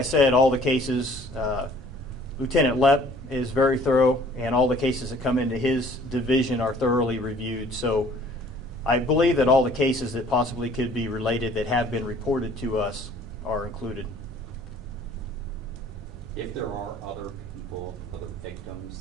said, all the cases, Lieutenant Lepp is very thorough, and all the cases that come into his division are thoroughly reviewed. So I believe that all the cases that possibly could be related that have been reported to us are included. If there are other people, other victims,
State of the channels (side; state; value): both; normal; correlation 0.55